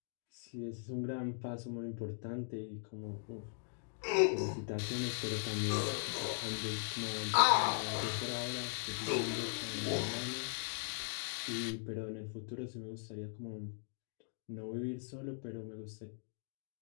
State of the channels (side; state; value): right; silent; digital silence